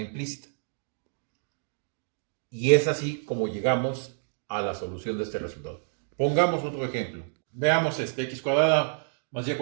Y es así como llegamos a la solución de este resultado. Pongamos otro ejemplo. Veamos x cuadrada más y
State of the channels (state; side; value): silent; left; digital silence